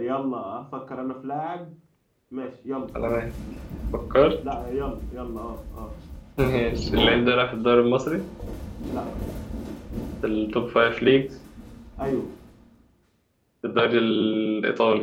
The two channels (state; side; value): identical; both; correlation 1.00